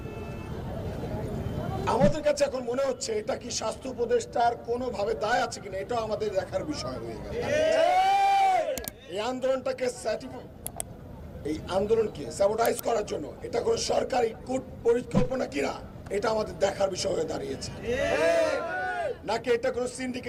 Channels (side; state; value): both; identical; correlation 1.00